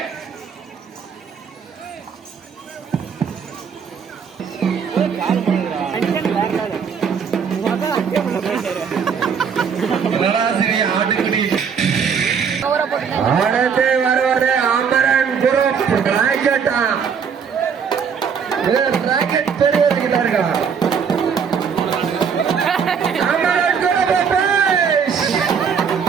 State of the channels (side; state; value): left; quieter; 6.7 dB